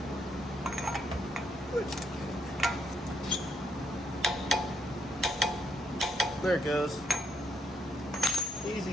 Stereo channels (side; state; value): both; normal; correlation 0.75